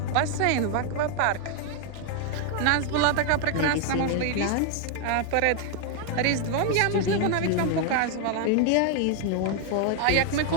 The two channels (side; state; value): both; different; correlation 0.00